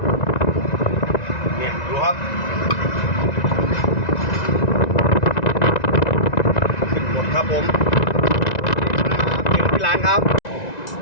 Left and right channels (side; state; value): right; late; 1.9 ms